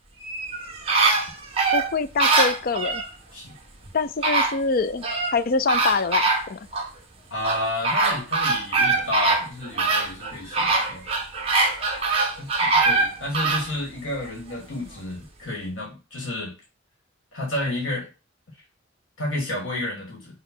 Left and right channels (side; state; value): both; normal; correlation -0.14